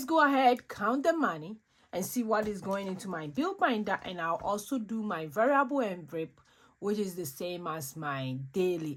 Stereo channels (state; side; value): identical; both; correlation 1.00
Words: go ahead, count the money, and see what is going into my bill binder. And I'll also do my variable envelope, which is the same as my